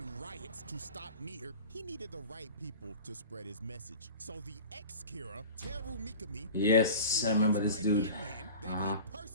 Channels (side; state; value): both; inverted; correlation -0.39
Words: riots to stop Nier, he needed the right people to spread his message. So the ex-Kira, Teru Mikami, Yes, I remember this dude. that Uh-huh. he